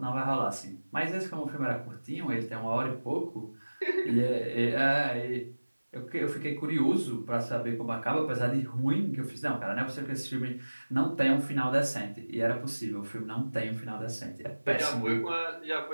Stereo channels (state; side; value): inverted; both; correlation -1.00